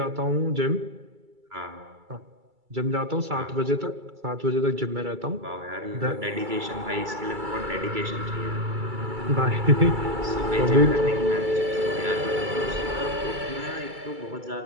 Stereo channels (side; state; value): left; late; 2.3 ms